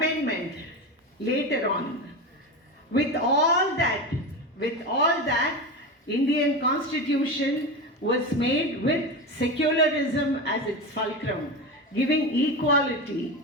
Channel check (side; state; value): both; normal; correlation 0.21